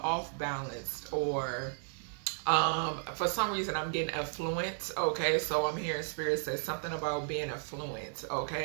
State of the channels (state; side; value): silent; left; digital silence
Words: or for some reason I'm getting affluent, okay? So I'm hearing Spirit says something about being affluent,